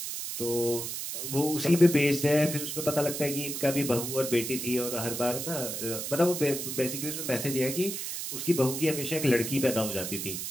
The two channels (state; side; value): noise; right; hiss, 5 dB below the sound